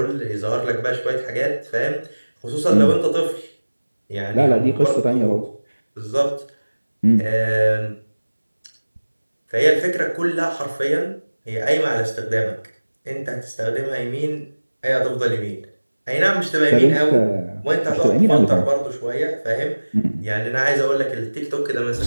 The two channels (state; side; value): inverted; both; correlation -1.00